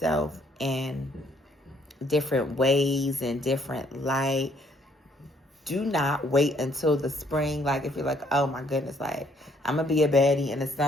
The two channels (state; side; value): normal; both; correlation 0.66